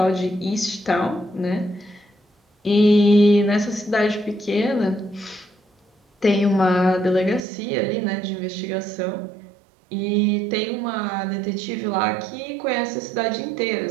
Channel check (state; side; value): drops out; left; at 7.4 s